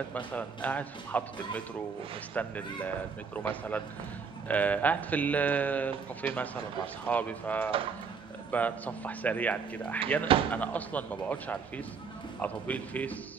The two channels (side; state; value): left; quieter; 5.6 dB